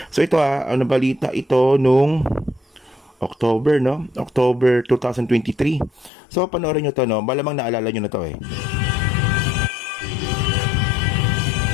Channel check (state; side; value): drops out; right; at 6.1 s